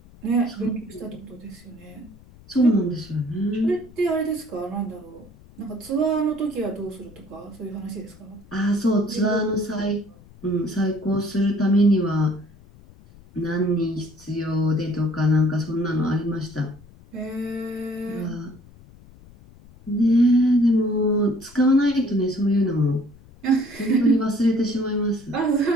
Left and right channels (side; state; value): left; noise; rumble, 23 dB below the sound